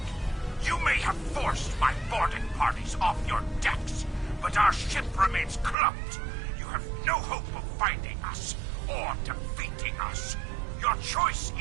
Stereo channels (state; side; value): drops out; left; at 5.8 s